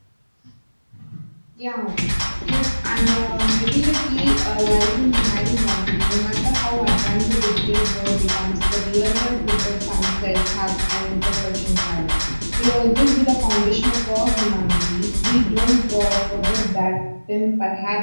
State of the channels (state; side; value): inverted; both; correlation -1.00